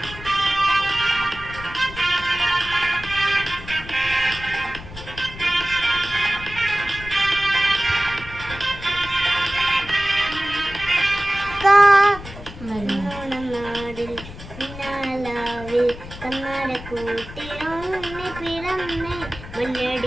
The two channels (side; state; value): left; noise; rumble, 14 dB below the sound